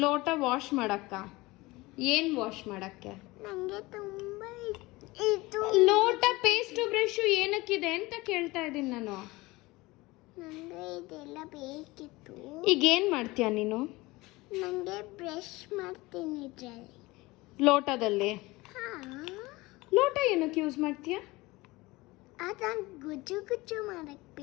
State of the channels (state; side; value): quieter; right; 21.4 dB